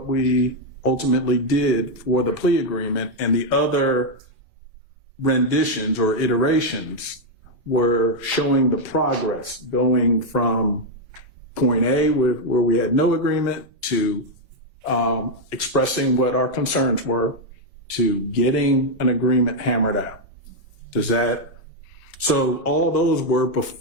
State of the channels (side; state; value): both; normal; correlation 0.00